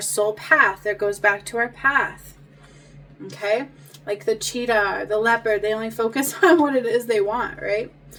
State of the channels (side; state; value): both; identical; correlation 1.00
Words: soul path. That goes back to our path. Okay, like the cheetah, the leopard, they only focus on what it is they want, right?